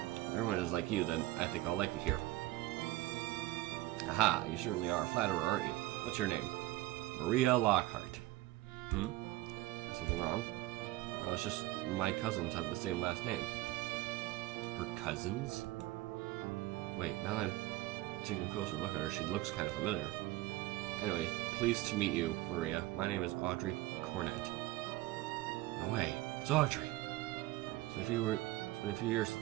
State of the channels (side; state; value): left; quieter; 17.3 dB